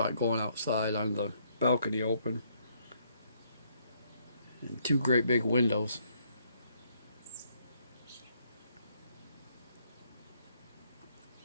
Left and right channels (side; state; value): both; inverted; correlation -0.70